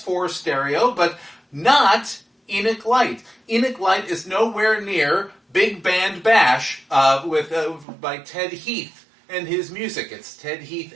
Stereo, but not Enoch Light. Enoch Light is nowhere near Big Band Bash by Ted Heath and his music. It's Ted Heath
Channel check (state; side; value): drops out; left; at 7.9 s